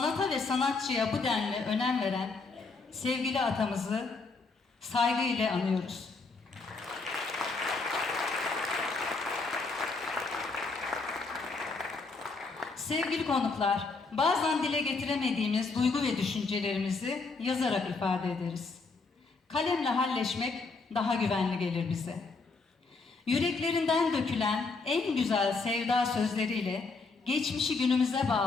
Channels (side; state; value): right; quieter; 4.0 dB